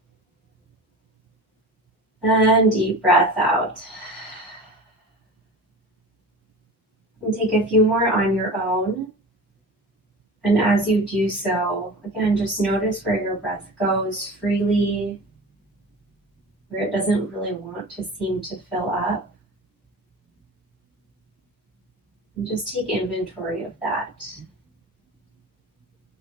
And deep breath out. And take a few more on your own. And as you do so, again, just notice where your breath goes freely, where it doesn't really want to seem to fill up. And just take inventory of that.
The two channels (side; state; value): both; normal; correlation 0.34